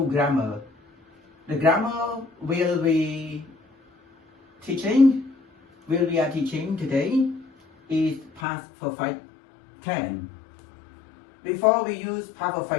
grammar. The grammar we are teaching today is past perfect tense. Before we use past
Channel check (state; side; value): drops out; right; at 8.4 s